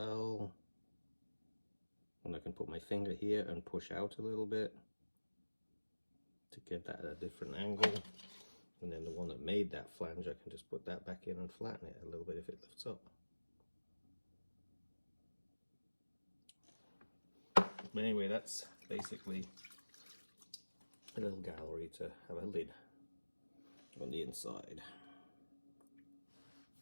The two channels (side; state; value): both; inverted; correlation -1.00